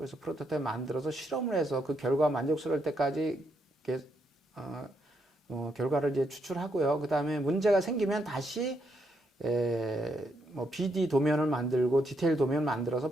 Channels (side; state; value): both; normal; correlation 0.78